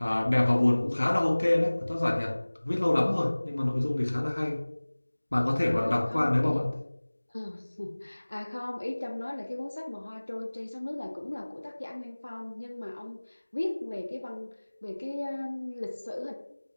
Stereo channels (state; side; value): inverted; both; correlation -1.00